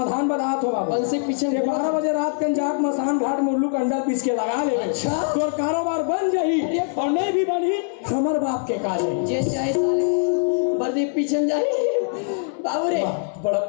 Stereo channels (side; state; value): right; silent; 63 dB below the other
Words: बनात हो बाबू। बंसी पीछे 12 बजे रात के जात मसान घाट मुर्लू का अंडा पीस के लगा ले। अच्छा तोर कारोबार बन जाही और नहीं भी बनी हमर बाप के काजे। जे चाहे साले वर्दी पीछे जाए। बाबू रे बड़ा